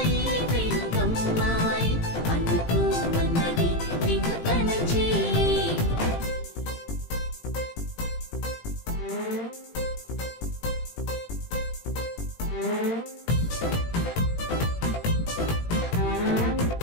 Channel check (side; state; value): right; late; 18 ms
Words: తెలుగమ్మాయి అందుకు మన్నది వింతన చేయి